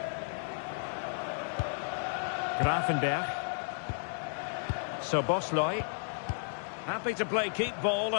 Gravenberch. Szoboszlai. Happy to play keep ball,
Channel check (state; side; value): silent; right; digital silence